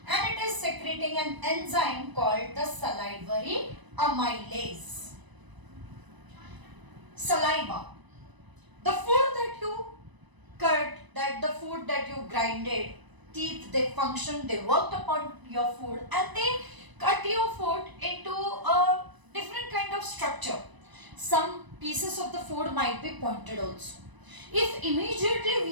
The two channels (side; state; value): left; late; 1.0 ms